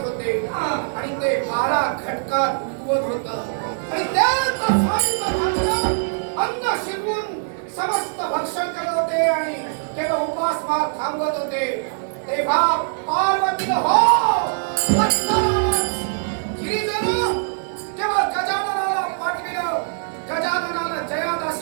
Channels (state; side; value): silent; left; 64 dB below the other